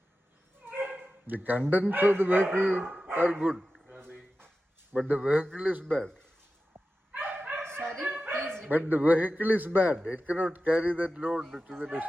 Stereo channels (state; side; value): normal; both; correlation 0.93